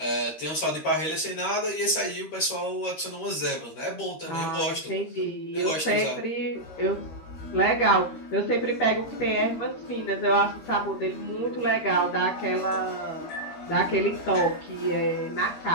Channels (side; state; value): right; late; 13 ms